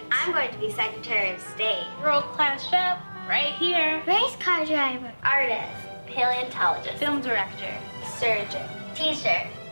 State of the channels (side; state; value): both; inverted; correlation -1.00